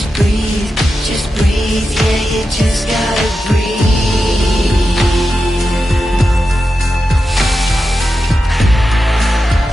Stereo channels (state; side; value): normal; both; correlation 0.90